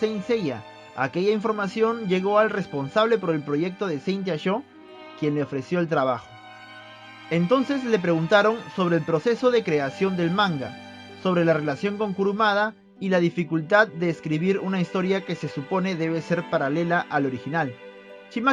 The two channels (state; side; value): identical; both; correlation 1.00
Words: Seiya. Aquella información llegó al responsable por el proyecto de Saint Sho, quien le ofreció el trabajo. Entonces le preguntaron sobre el proceso de creación del manga, sobre la relación con Kurumada y la dificultad de escribir una historia que se supone debe ser paralela al original.